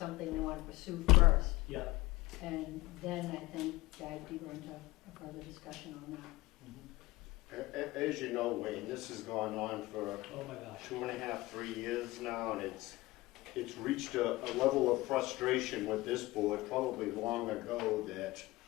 they want to pursue first. Yeah. And then I think dive deeper into a further discussion on that. As you know, Wayne, this has gone on for Oh my gosh. 2.5, 3 years now, and it's reached a level of frustration with this board probably long ago that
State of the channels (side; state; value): right; quieter; 20.2 dB